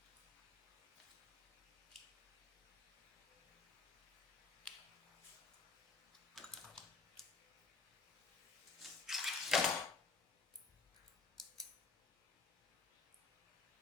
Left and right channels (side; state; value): right; quieter; 4.1 dB